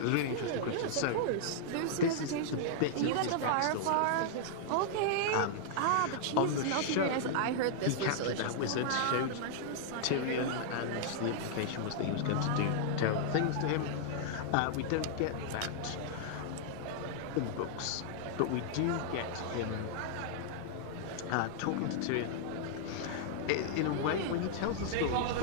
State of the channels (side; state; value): both; different; correlation -0.01